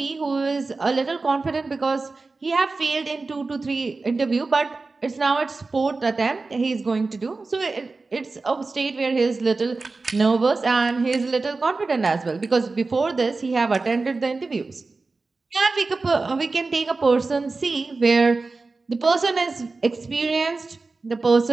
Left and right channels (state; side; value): quieter; left; 3.8 dB